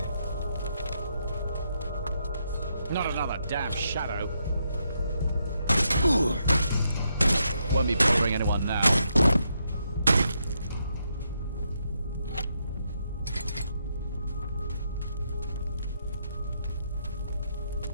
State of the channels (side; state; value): both; inverted; correlation -0.79